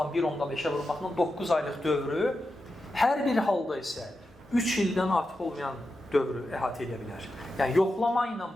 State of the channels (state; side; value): normal; both; correlation 0.89